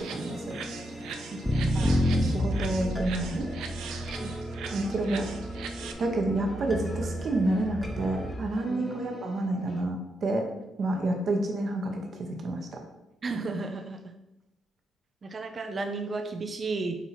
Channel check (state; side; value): normal; both; correlation 0.82